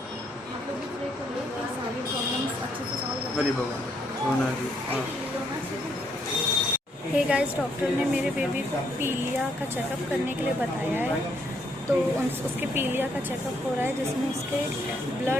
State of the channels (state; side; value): normal; both; correlation 0.72